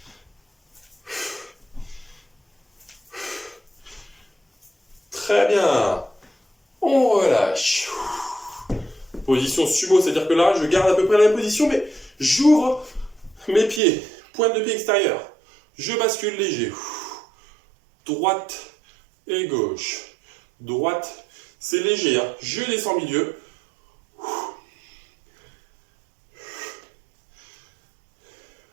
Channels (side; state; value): left; drops out; at 13.8 s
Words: Très bien. On relâche. Position sumo, c'est-à-dire que là, je garde à peu près la même position, mais j'ouvre mes pieds. Pointe de pied extérieure. Je bascule léger. Droite et gauche. Droite, c'est léger. Hein. Je descends milieu.